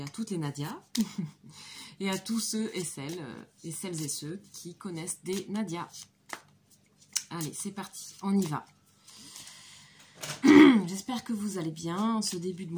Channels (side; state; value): both; identical; correlation 1.00